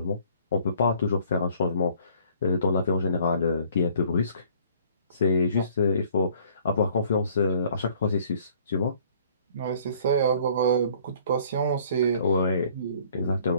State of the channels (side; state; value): both; inverted; correlation -0.57